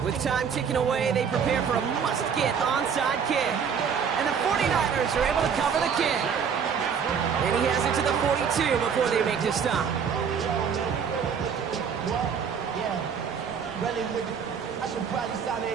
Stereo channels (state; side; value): quieter; left; 6.9 dB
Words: With time ticking away, they prepare for a must-get onside kick. And the 49ers are able to cover the kick. And he has it to the 42 before they make the stop. Really with it. I should probably sign a